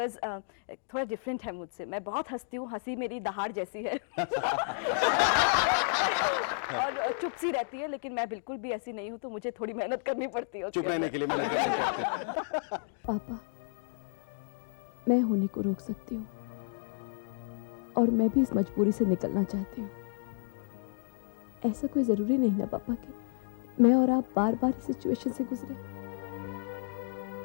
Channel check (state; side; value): silent; right; digital silence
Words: थोड़ा डिफरेंट है मुझसे, मैं बहुत हंसती हूँ, हंसी मेरी दहाड़ जैसी है और चुप सी रहती है, लेकिन मैं बिल्कुल भी ऐसी नहीं हूँ, तो मुझे थोड़ी मेहनत करनी पड़ती है। चुप रहने के लिए मेहनत करनी पड़ती है। पापा, मैं होने को रोक सकती हूँ और मैं भी इस मजबूरी से निकलना चाहती हूँ। ऐसा कोई ज़रूरी नहीं ना पापा कि मैं और आप बार बार इस सिचुएशन से गुजरे।